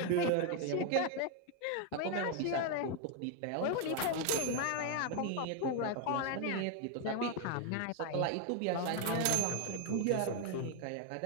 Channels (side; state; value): both; different; correlation 0.01